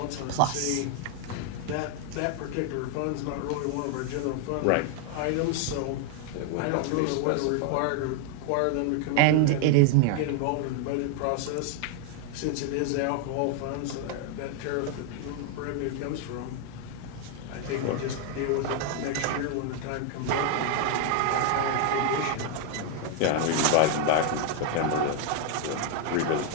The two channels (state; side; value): different; both; correlation 0.00